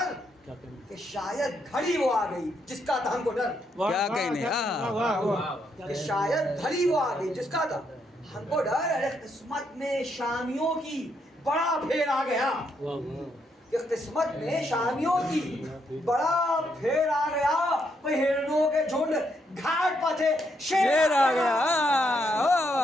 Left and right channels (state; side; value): normal; both; correlation 0.76